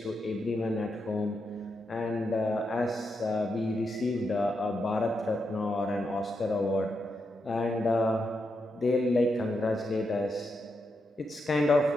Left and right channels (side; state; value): both; normal; correlation 0.84